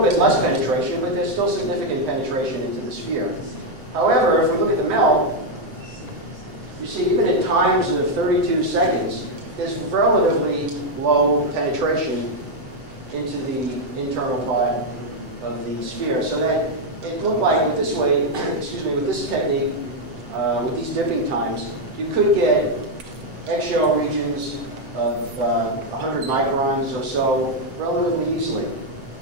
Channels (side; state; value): left; late; 7.7 ms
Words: less penetration, but there's still significant penetration into the sphere. However, if we look at the melt, you see even at times of 32 seconds, there's relatively low penetration into the internal part of the sphere, so that it looked like with this way, excuse me, with this technique, with these dipping times, you could get eggshell regions of 100 microns or so relatively easily.